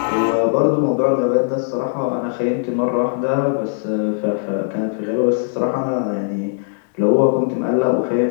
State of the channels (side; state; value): right; silent; digital silence